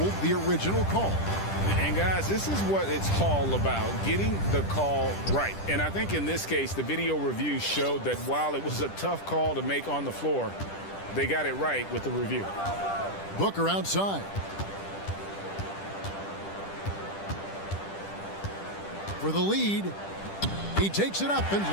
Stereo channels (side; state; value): right; late; 10 ms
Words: the original call. And guys, this is what it's all about, getting the call right. And I think in this case, the video review showed that while it was a tough call to make on the floor, they got it right with the review. Booker outside. For the lead, he takes it up and